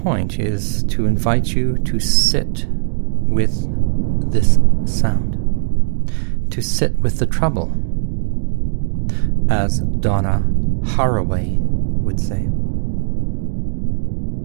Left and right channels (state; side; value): silent; left; digital silence